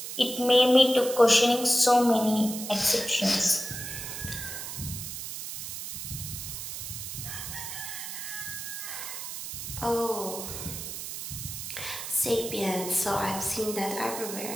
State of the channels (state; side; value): noise; right; hiss, 7 dB below the sound